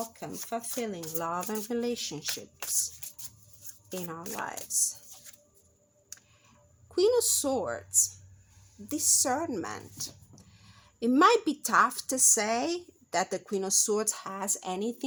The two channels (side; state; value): both; identical; correlation 1.00